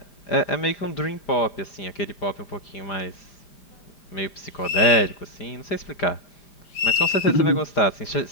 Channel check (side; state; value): right; late; 5.0 ms